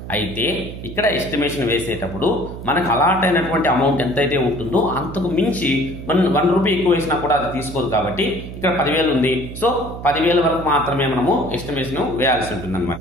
అయితే ఇక్కడ ఎస్టిమేషన్ వేసేటప్పుడు మనకు అలాట్ అయినటువంటి అమౌంట్ ఎంతైతే ఉంటుందో అంతకు మించి 1 రూపీ ఎక్కువ వేసినా కూడా అది తీసుకోదు కాబట్టి ఇక్కడ 10,000 ఉంది. సో 10,000 వరకు మాత్రమే మనము ఎస్టిమేషన్ వేయాల్సి ఉంటుంది అనమాట.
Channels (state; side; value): noise; right; hum, 10 dB below the sound